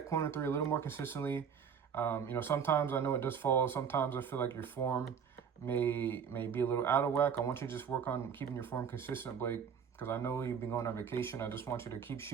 corner 3 a little more consistently. Sometimes I know it does fall. Sometimes I feel like your form may be a little out of whack. I want you to just work on keeping your form consistent, Blake, because I know you've been going on vacation. I just want you to keep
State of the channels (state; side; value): quieter; left; 7.2 dB